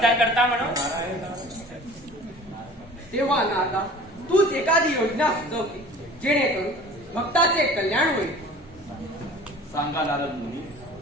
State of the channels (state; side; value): normal; both; correlation 0.44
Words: करता म्हणून. तेव्हा नारदा, तूच एखादी योजना सुचव की जेणेकरून भक्ताचे कल्याण होईल. सांगा नारद मुनी,